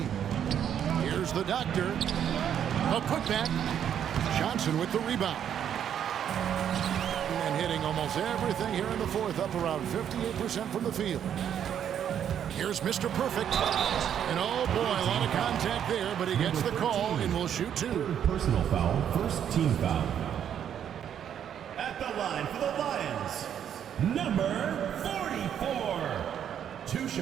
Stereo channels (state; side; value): quieter; left; 9.2 dB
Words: Here's the Doctor. A putback. Johnson with the rebound. And hitting almost everything here in the 4th, up around 58% from the field. Here's Mr. Perfect. And oh boy, a lot of contact there, but he gets the call and will shoot 2. Personal foul, first team foul. At the line for the Lions, number 44. 2